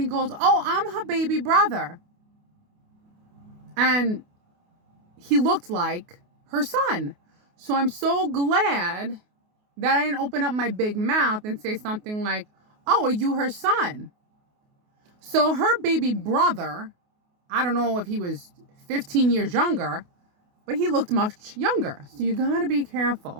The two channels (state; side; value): late; left; 28 ms